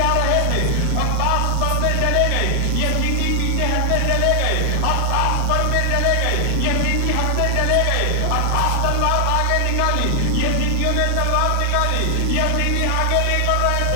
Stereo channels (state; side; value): different; both; correlation 0.00